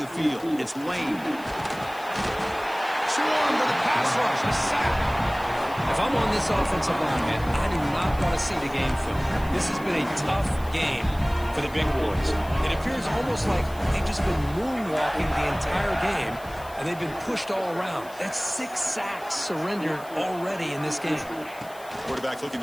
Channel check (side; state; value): left; noise; hiss, 21 dB below the sound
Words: field. It's Lane. Swarm with a pass rush. A sack. If I'm on this offensive line, man, I do not want to see the game film. This has been a tough game for the big boys. It appears almost like they've just been moonwalking the entire game, and they've been pushed all around. That's 6 sacks surrendered already in this game. Quarterback looking